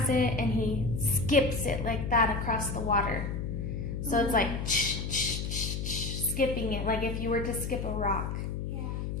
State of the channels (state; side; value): noise; left; hum, 3 dB below the sound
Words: it and he skips it like that across the water. So it's like skipping it, like if you were to skip a rock. Yeah.